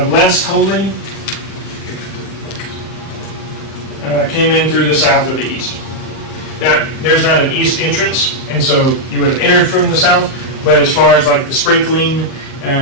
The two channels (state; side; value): late; right; 38 ms